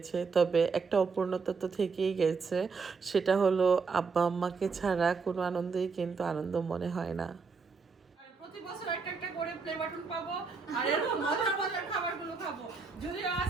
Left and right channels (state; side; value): quieter; left; 4.9 dB